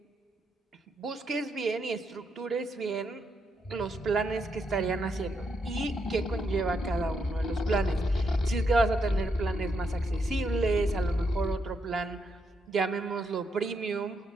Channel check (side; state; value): both; normal; correlation 0.79